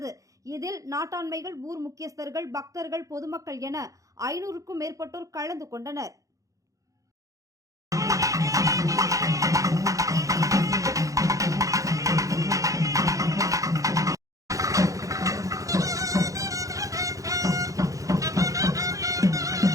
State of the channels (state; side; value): late; left; 0.16 ms